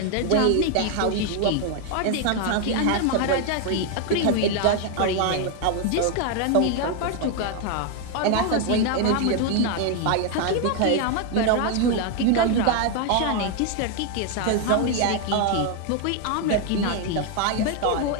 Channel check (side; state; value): both; different; correlation 0.01